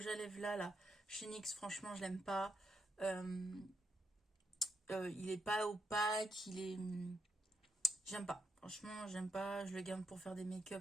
à lèvres là chez NYX. Franchement, je l'aime pas. Il est pas opaque. Il est... J'aime pas. Franchement, j'aime pas. Je le garde pour faire des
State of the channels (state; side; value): normal; both; correlation 0.80